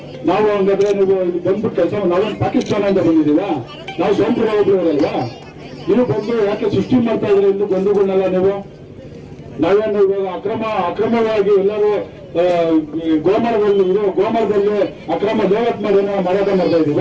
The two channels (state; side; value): identical; both; correlation 1.00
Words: ನಾವು ಹಂಗಾದ್ರೆ ನೀವು ಬಂದ್ಬಿಟ್ಟು ಕೆಲಸ ನಾವೇನು ಪಾಕಿಸ್ತಾನದಿಂದ ಬಂದಿದ್ದೀವ? ನಾವು ಸ್ವಂತ ಹೋಗ್ಲಿವರಲ್ವಾ? ನೀವು ಬಂದು ಯಾಕೆ ಸೃಷ್ಟಿ ಮಾಡ್ತಾ ಇದ್ರೆ ಇಲ್ಲಿ ಬಂಧುಗಳನ್ನೆಲ್ಲ ನೀವು? ನಾವೇನು ಇವಾಗ ಅಕ್ರಮವಾಗಿ ಎಲ್ಲರೂ ಗೋಮರದಲ್ಲಿ ಅಕ್ರಮ ದೇವತ್ ಮಾಡಿ ಏನೋ ಮಾರಾಟ ಮಾಡ್ತಾ ಇದೀವ?